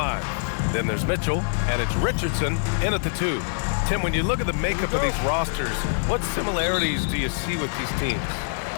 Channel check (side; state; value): right; silent; digital silence